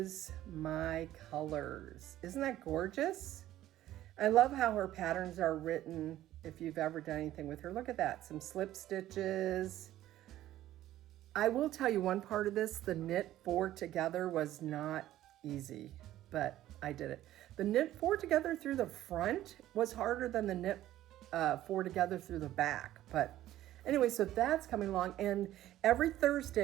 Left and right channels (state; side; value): quieter; left; 13.8 dB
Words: my colors. Isn't that gorgeous? I love how her patterns are written. If you've ever done anything with her, look at that. Some slip stitches. I will tell you one part of this, the knit 4 together was not easy, but I did it. The knit 4 together through the front was harder than the knit 4 together through the back. But anyway, so that's coming along. And every